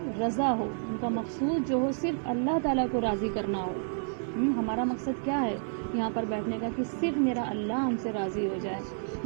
رضا ہو، ان کا مقصود جو ہو صرف اللہ تعالیٰ کو راضی کرنا ہو۔ ہمارا مقصد کیا ہے یہاں پر بیٹھنے کا؟ کہ صرف میرا اللہ ہم سے راضی ہو جائے،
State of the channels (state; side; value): silent; left; digital silence